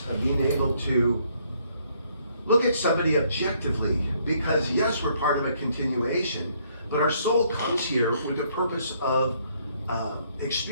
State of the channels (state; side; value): inverted; both; correlation -0.68